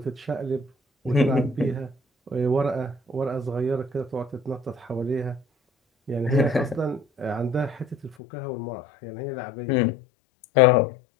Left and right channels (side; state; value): right; drops out; at 8.2 s